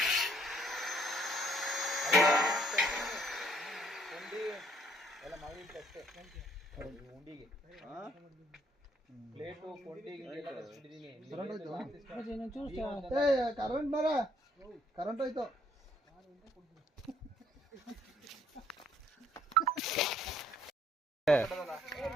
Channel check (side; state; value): both; normal; correlation 0.65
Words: ಉಂಡಿಗೆ ಪ್ಲೇಟು ಕೊಂಡಿಗೆ ಕರೆಂಟ್ ಮರ ಕರೆಂಟ್ ಹೋಯ್ತು